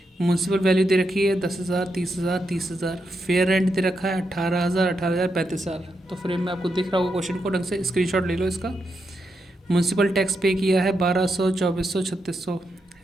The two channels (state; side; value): normal; both; correlation 0.84